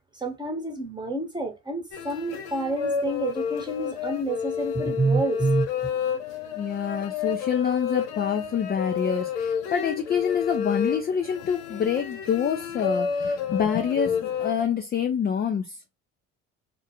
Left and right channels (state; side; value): quieter; right; 4.3 dB